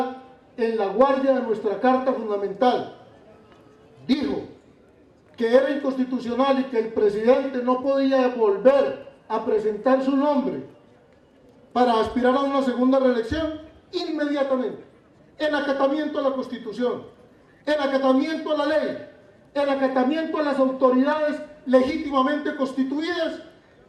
en la guardia de nuestra Carta Fundamental, dijo que era inconstitucional y que el presidente no podía volver a presentar su nombre para aspirar a una segunda reelección, inmediatamente, en acatamiento a la Constitución, en acatamiento a la ley, en acatamiento a las autoridades legítimamente constituidas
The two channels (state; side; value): identical; both; correlation 1.00